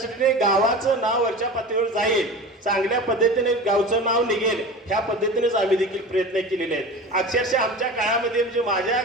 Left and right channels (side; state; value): both; normal; correlation 0.33